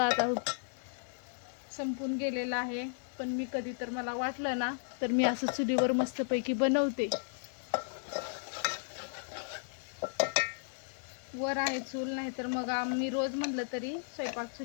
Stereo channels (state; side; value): silent; right; digital silence